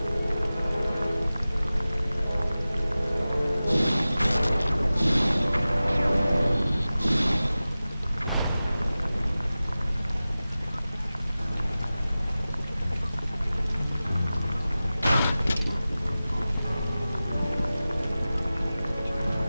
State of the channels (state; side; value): inverted; both; correlation -0.96